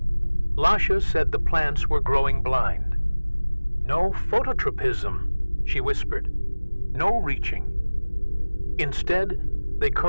Lasha said the plants were growing blind. "No phototropism," she whispered. "No reaching." Instead, they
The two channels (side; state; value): both; inverted; correlation -1.00